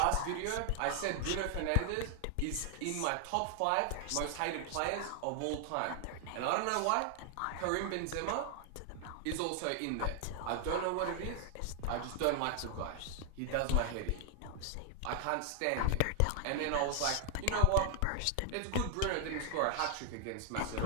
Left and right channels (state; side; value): different; both; correlation 0.00